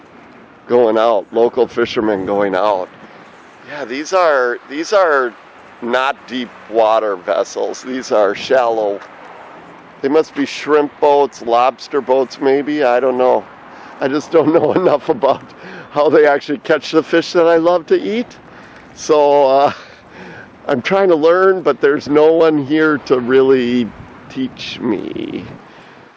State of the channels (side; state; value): both; identical; correlation 1.00